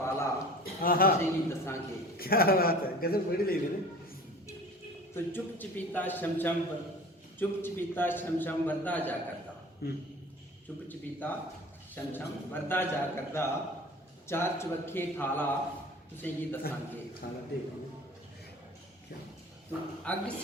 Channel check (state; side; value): normal; both; correlation 0.42